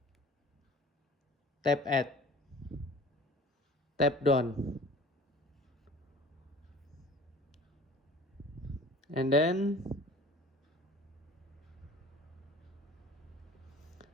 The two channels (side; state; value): both; normal; correlation 0.45